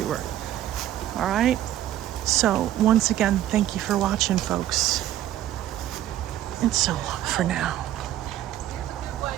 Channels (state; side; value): quieter; left; 12.7 dB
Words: All right? So, once again, thank you for watching, folks. And so long for now.